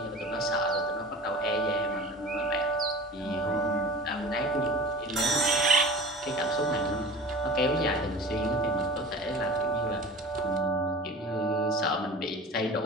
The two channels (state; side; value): normal; both; correlation 0.38